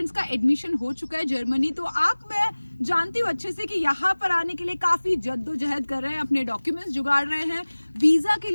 का एडमिशन हो चुका है जर्मनी। तो मैं जानती हूँ अच्छे से कि यहाँ पर आने के लिए काफी जद्दोजहद कर रहे हैं, अपने डॉक्यूमेंट्स जुगाड़ रहे हैं, वीजा के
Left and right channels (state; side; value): inverted; both; correlation -1.00